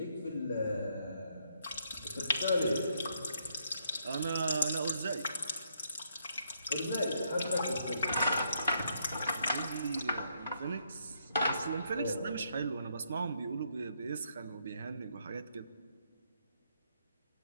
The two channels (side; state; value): both; inverted; correlation -0.74